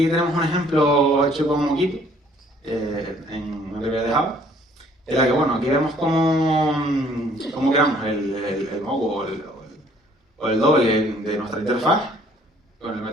tenemos un ejemplo hecho con Moquito, en una librería de Java, en la que, bueno, aquí vemos cómo creamos el mock o el doble de nuestra interfaz con el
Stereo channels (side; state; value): both; normal; correlation 0.60